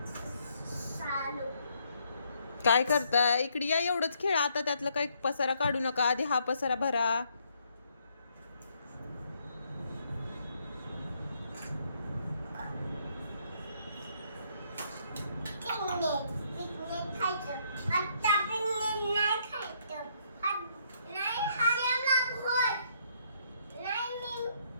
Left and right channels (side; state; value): both; inverted; correlation -0.71